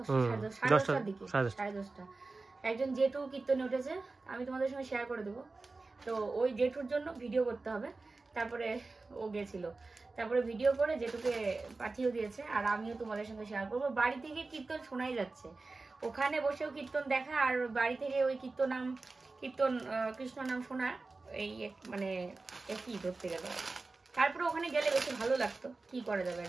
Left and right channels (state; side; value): quieter; left; 3.6 dB